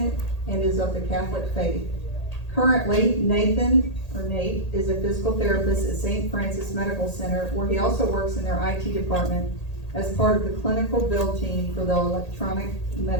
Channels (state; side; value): late; right; 1.8 ms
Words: and is of the Catholic faith. Currently, Nate is a physical therapist at St. Francis Medical Center, where he also works in their IT department as part of the clinical build team for the electronic